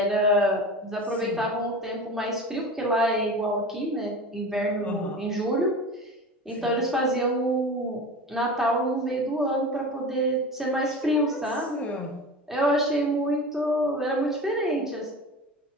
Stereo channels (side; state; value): both; normal; correlation 0.32